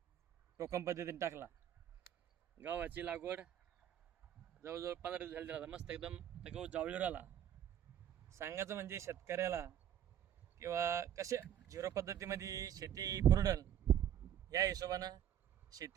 टोकन पद्धतीने टाकला. गव्हाची लागवड जवळजवळ 15 दिवस झाली राहता. मस्त एकदम ते गहू जावळीवर आला. सांगायचं म्हणजे शेतकऱ्याला किंवा कसे झिरो पद्धतीमध्ये शेती पुरडल या हिशोबानं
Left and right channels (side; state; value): left; quieter; 10.2 dB